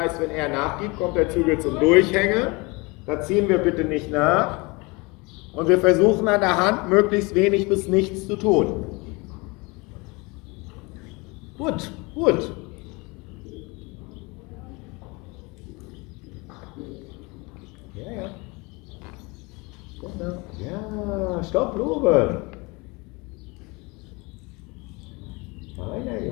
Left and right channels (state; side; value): quieter; right; 26.5 dB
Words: wenn er nachgibt, kommt der Zügel zum Durchhängen. Da ziehen wir bitte nicht nach. Und wir versuchen an der Hand möglichst wenig bis nichts zu tun. Gut, gut. Ja, stopp, Lobe. Meiner